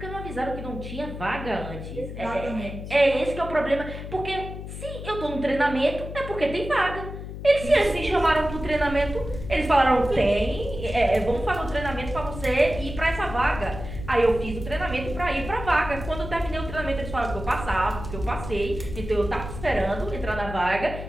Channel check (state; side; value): noise; left; hum, 9 dB below the sound